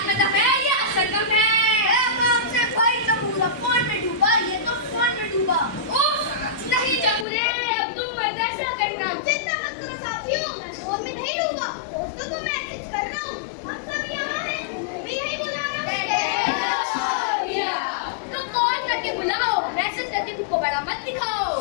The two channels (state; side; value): drops out; right; at 7.2 s